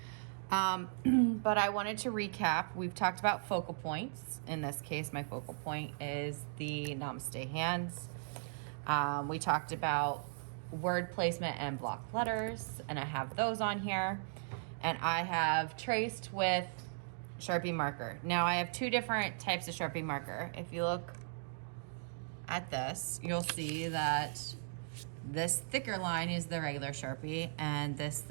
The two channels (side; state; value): left; silent; digital silence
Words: But I wanted to recap. We've talked about focal points. In this case, my focal point is the Namaste hands. We talked about word placement and block letters, and I have those on here. And I have traced with Sharpie marker. Now I have two different types of Sharpie marker. If you look at this, you'll see that this thicker line is the regular Sharpie and this